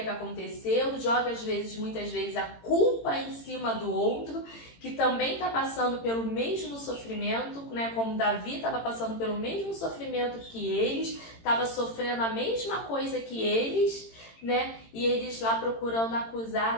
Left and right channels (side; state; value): right; late; 18 ms